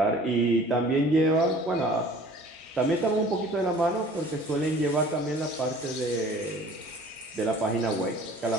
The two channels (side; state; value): both; normal; correlation 0.48